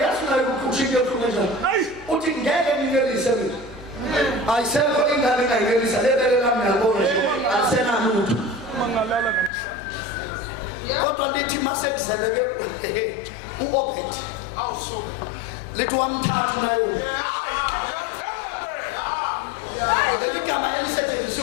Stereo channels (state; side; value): drops out; right; at 9.5 s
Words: ukuthi into ehlunge njani. Uthi ngeke nginelise mina. Ayisekho ingane engayinelisa lebele lami ngiyabona nje alisenalutho. Mangalala namhlanje. Kodwa lithi masekuzaleke u-Obed Awusuka. lithi wamthatha nayo. Hayi, yathebe. Igama